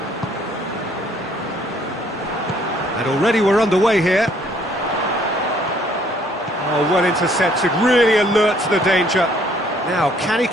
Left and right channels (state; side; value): normal; both; correlation 0.63